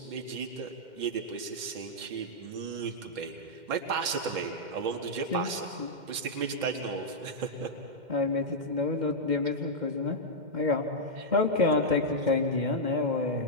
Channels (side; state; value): left; late; 2.1 ms